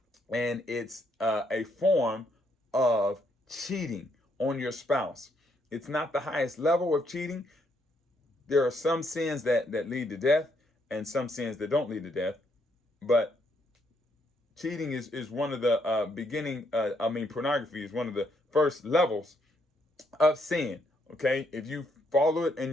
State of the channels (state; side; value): normal; both; correlation 0.73